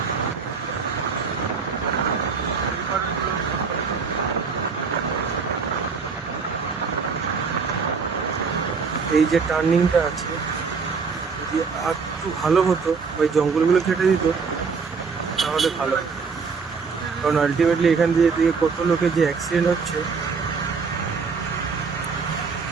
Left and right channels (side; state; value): left; quieter; 5.2 dB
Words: এই যে টার্নিংটা আছে, যদি আর একটু ভালো হতো, ওই জঙ্গলগুলো কেটে দিত তাহলে ভালো হতো। কারণ আলটিমেটলি এখান দিয়ে কত লোকের যে অ্যাক্সিডেন্ট হচ্ছে